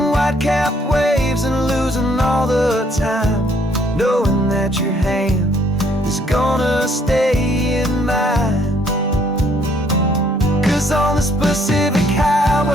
white-capped waves and losing all the time, knowing that your hand is gonna stay in mine. 'Cause on this Pacific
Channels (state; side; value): normal; both; correlation 0.66